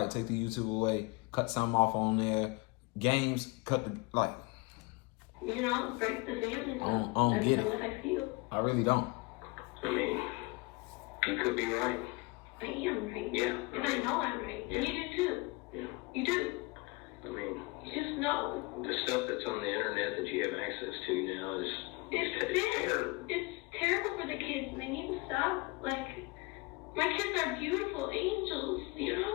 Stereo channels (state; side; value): quieter; right; 26.0 dB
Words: right, take the YouTube away. Cut something off on there. Games, cut the, like. Break the family. I don't get it. That's how I feel. I really don't. I mean, you could be right. I am right. Yeah. And I know I'm right. And you do too. Yeah. You do. I mean, You just know. the stuff that's on the internet that you have access to now is It's terrible for the kids, and they need to stop. Like, my kids are beautiful angels, and